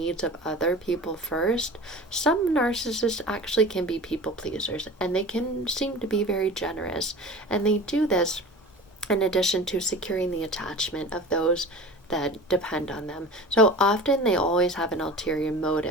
of other people first, some narcissists actually can be people pleasers, and they can seem to be very generous. And they do this in addition to securing the attachment of those that depend on them. So often they always have an ulterior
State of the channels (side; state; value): both; normal; correlation 0.36